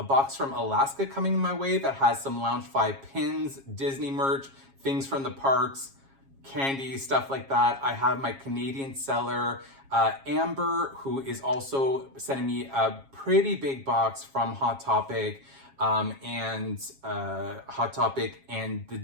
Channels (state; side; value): late; left; 7.3 ms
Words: box from Alaska coming my way that has some Loungefly pins, Disney merch, things from the parks, candy, stuff like that. I have my Canadian seller, Amber, who is also sending me a pretty big box from Hot Topic, and the